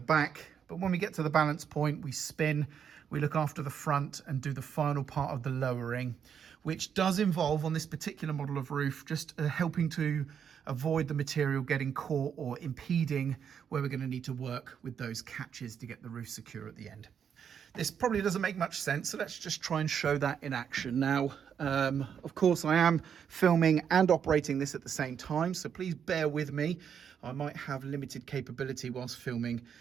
back. But when we get to the balance point, we spin, we look after the front and do the final part of the lowering, which does involve, on this particular model of roof, just helping to avoid the material getting caught or impeding where we're going to need to work with those catches to get the roof secure at the end. This probably doesn't make much sense, so let's just try and show that in action. Now, of course, I am filming and operating this at the same time, so please bear with me. I might have limited capability whilst filming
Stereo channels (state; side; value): quieter; left; 7.8 dB